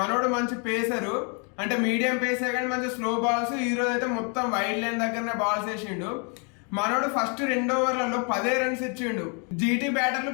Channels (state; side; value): quieter; right; 36.7 dB